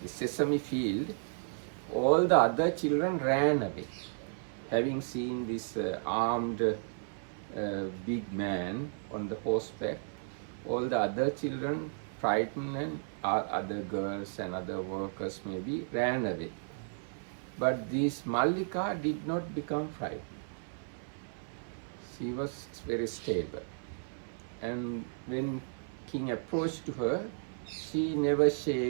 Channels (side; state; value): left; silent; 55 dB below the other